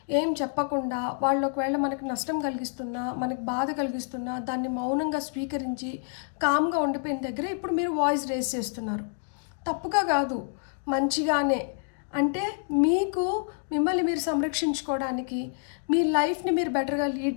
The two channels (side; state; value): right; silent; 56 dB below the other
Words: ఏం చెప్పకుండా, వాళ్ళు ఒకవేళ మనకి నష్టం కలిగిస్తున్నా, మనకి బాధ కలిగిస్తున్నా దాన్ని మౌనంగా స్వీకరించి కామ్గా ఉండిపోయిన దగ్గర ఇప్పుడు మీరు వాయిస్ రేస్ చేస్తున్నారు. తప్పుగా కాదు, మంచిగానే. అంటే మీకు మిమ్మల్ని మీరు సంరక్షించుకోవడానికి, మీ లైఫ్ని మీరు బెటర్గా లీడ్